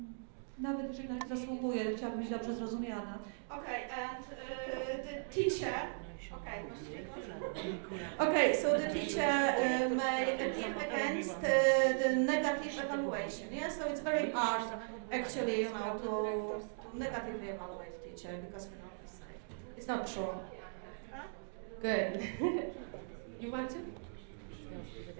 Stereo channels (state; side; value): silent; left; digital silence